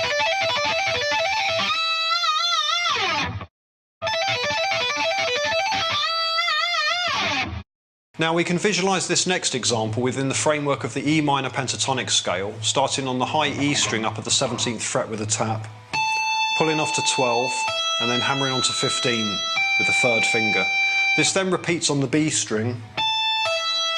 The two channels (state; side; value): identical; both; correlation 1.00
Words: Now we can visualise this next example within the framework of the E minor pentatonic scale, starting on the high E string up at the 17th fret with a tap, pulling off to 12 and then hammering onto 15 with the 3rd finger. This then repeats on the B string.